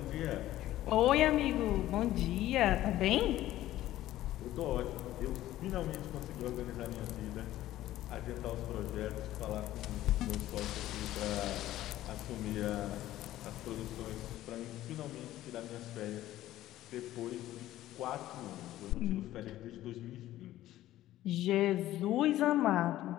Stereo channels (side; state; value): right; quieter; 14.4 dB